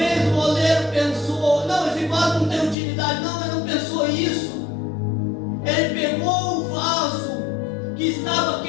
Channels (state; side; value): drops out; right; at 2.8 s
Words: o oleiro pensou: não, esse vaso não tem utilidade. Não, ele não pensou isso. Ele pegou o vaso que estava